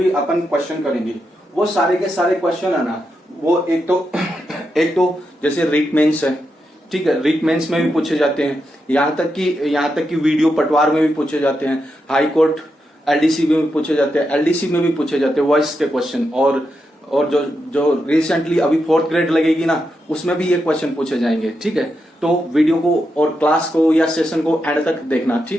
अपन क्वेश्चन करेंगे वो सारे के सारे क्वेश्चन है ना, वो एक तो जैसे रीट मेंस है, ठीक है। रीट मेंस में भी पूछे जाते हैं, यहाँ तक कि वीडियो पटवार में भी पूछे जाते हैं, हाई कोर्ट एलडीसी में भी पूछे जाते हैं, एलडीसी में भी पूछे जाते हैं वॉइस के क्वेश्चन। और जो रिसेंटली अभी 4th ग्रेड लगेगी ना, उसमें भी ये क्वेश्चन पूछे जाएंगे, ठीक है। तो वीडियो को और क्लास को या सेशन को एंड तक देखना,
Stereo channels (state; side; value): normal; both; correlation 0.85